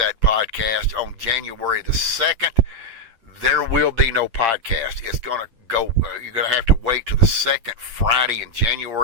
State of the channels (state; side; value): late; left; 8.8 ms